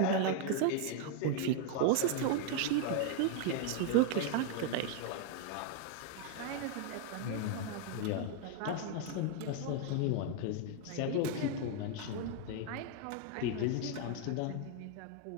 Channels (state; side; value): different; both; correlation 0.00